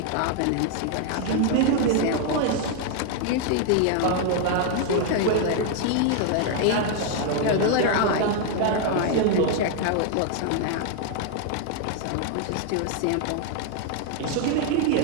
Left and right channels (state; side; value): different; both; correlation 0.00